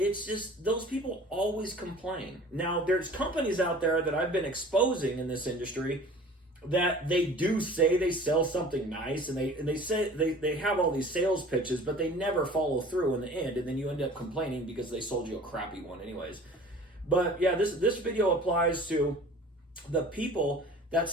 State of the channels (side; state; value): both; normal; correlation 0.45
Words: just those people always complain. Now, there's companies out there that I've been exposing in this industry that they do say they sell something nice, and they say they have all these sales pitches, but they never follow through in the end, and then you end up complaining because they sold you a crappy one anyways. But yeah, this video applies to the people that